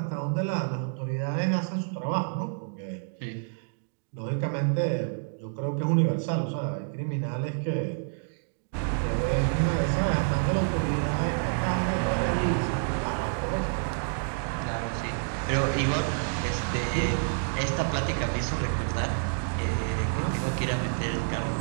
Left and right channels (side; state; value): left; silent; digital silence